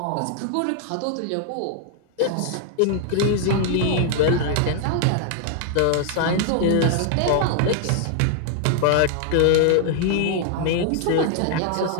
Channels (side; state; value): both; different; correlation 0.00